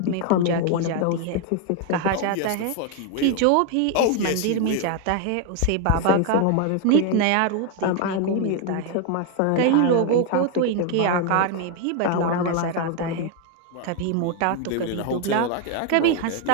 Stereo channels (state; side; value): different; both; correlation 0.01